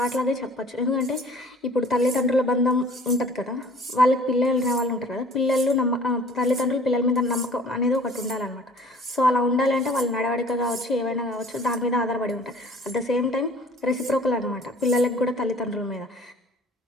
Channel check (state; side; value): normal; both; correlation 0.50